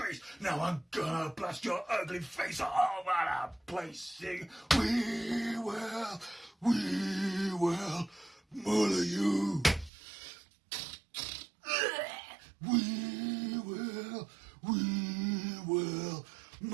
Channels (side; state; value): left; drops out; at 9.9 s